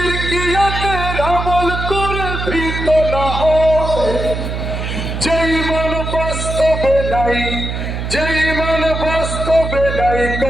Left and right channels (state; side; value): noise; right; hum, 4 dB below the sound